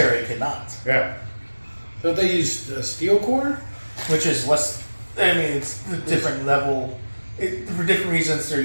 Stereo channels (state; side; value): inverted; both; correlation -1.00